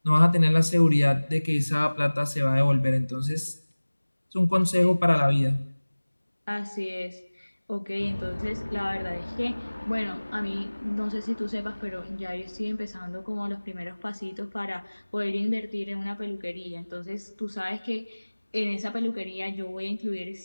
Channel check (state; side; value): inverted; both; correlation -1.00